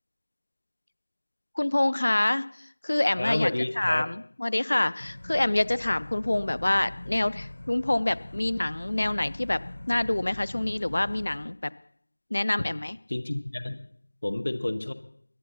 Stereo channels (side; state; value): both; inverted; correlation -1.00